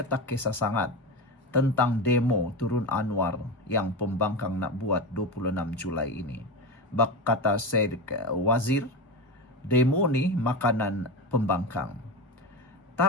tak kisah sangat tentang demo turun Anwar yang pembangkang nak buat 26 Julai ini. Kata Syed Wazir, demo ni makanan pembangkang.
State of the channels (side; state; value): both; normal; correlation 0.21